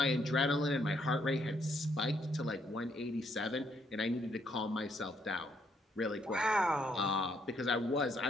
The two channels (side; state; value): both; normal; correlation 0.72